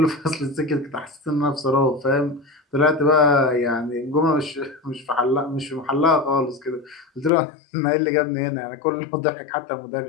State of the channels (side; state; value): right; drops out; at 7.3 s